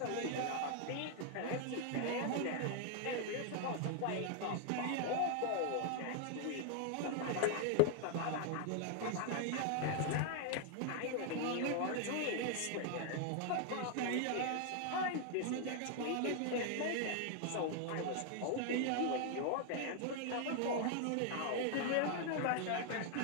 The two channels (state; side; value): different; both; correlation 0.00